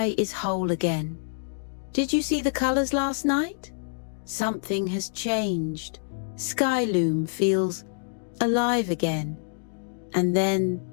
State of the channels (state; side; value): silent; right; digital silence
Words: is whole again. Did you see the colors last night? Something has changed. Skyloom feels alive again. And then,